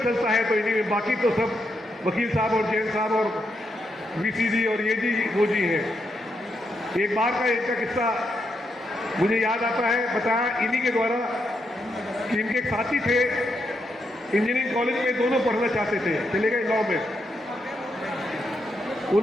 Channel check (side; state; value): both; normal; correlation 0.81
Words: चलता है तो इन्हीं में, बाकी तो सब वकील साहब और जैन साहब और वीसी जी और ये जी वो जी हैं। एक बार का इनका किस्सा मुझे याद आता है, बताया इन्हीं के द्वारा कि इनके एक साथी थे इंजीनियरिंग कॉलेज में, दोनों पढ़ना चाहते थे, चले गए लॉ में।